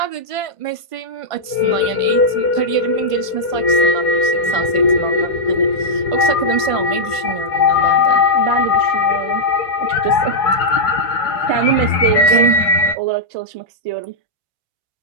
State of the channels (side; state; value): left; late; 1.5 ms